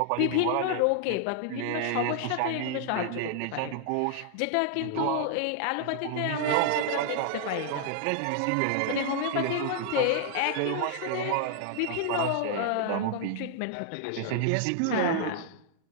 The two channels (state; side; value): different; both; correlation -0.01